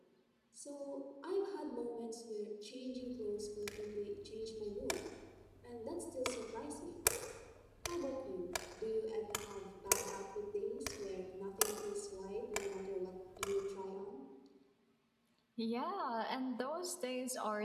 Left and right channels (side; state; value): both; identical; correlation 1.00